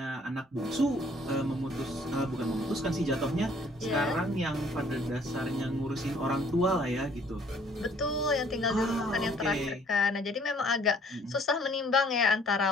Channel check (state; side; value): normal; both; correlation 0.59